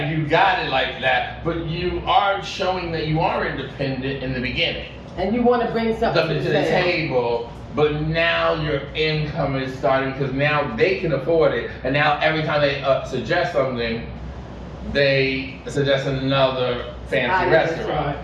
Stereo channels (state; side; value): identical; both; correlation 1.00